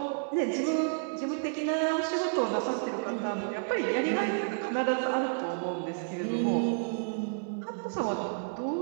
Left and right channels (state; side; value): silent; left; digital silence